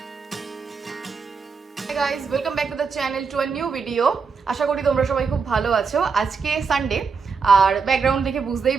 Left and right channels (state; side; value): quieter; left; 5.3 dB